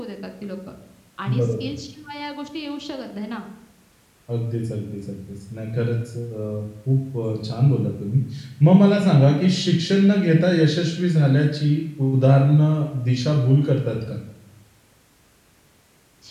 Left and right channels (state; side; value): identical; both; correlation 1.00